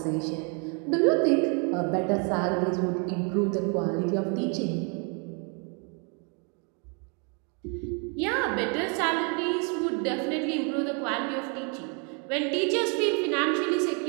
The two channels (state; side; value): quieter; left; 36.9 dB